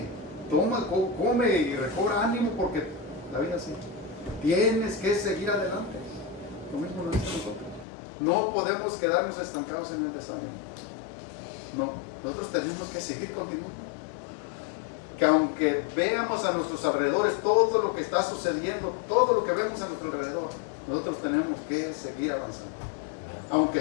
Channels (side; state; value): right; drops out; at 7.9 s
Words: y recobra ánimo, porque la vida así. Tienes que seguir adelante. Lo mismo lo dice nosotros. No podemos quedarnos estancados en el desánimo. No, nosotros tenemos que seguir continuando. Que aunque veamos a nuestros alrededores todo lo que está sucediendo, todo lo que vemos a nuestro alrededor, nosotros tenemos que seguir avanzando. Aunque